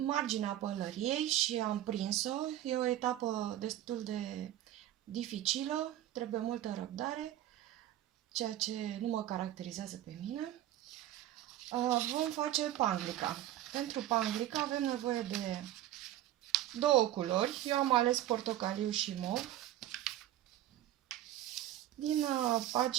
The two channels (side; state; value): left; quieter; 13.2 dB